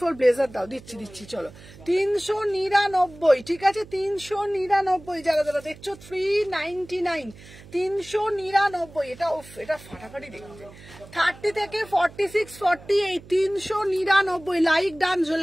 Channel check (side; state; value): right; noise; hum, 20 dB below the sound